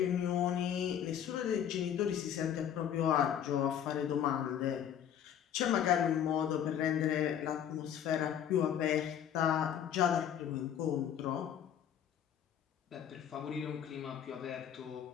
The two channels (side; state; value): right; quieter; 9.5 dB